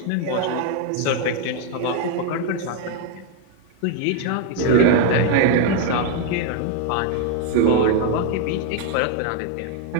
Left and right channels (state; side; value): different; both; correlation 0.01